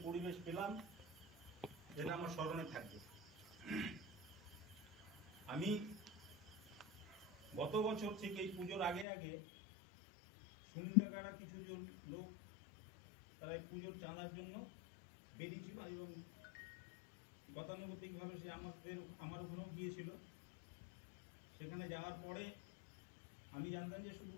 পরিবেশ পেলাম, যেটা আমার স্মরণে থাকবে। আমি গত বছর থেকে এই পুজোর আগে আগে সুনীল কাকারা কিছুজন লোক তারা এই পুজোর চাঁদার জন্য বেরিয়েছিল এবং গতানুগতিকভাবে সে আমার ওখানেও গিয়েছিল। সেখানে যাওয়ার পরে আমি জানতাম যে শুধু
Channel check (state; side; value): drops out; right; at 9.1 s